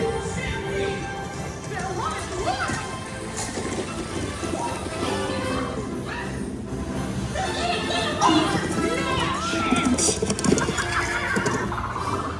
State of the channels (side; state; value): both; identical; correlation 1.00